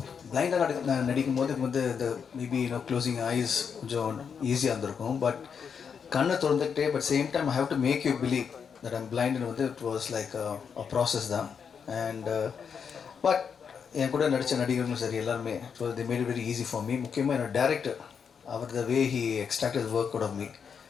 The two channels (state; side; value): quieter; right; 6.7 dB